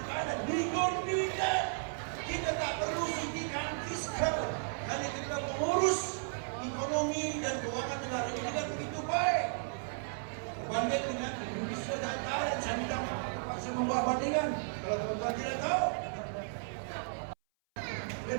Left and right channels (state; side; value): silent; left; 55 dB below the other